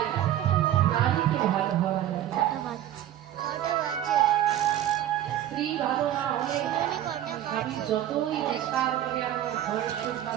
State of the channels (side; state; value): left; quieter; 12.2 dB